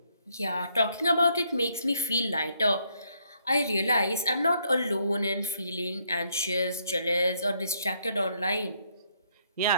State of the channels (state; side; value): inverted; both; correlation -0.72